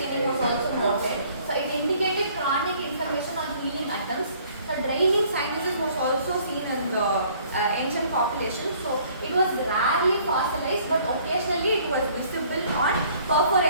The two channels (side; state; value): both; inverted; correlation -0.58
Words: was also noted. So it indicated chronic inflammation on healing attempts. So draining sinuses was also seen in the ancient population. So it was rarely fossilized, but occasionally it was visible on